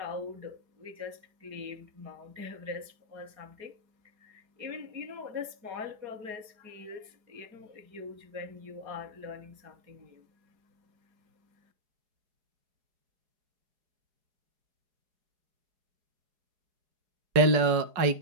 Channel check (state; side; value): late; left; 4.8 ms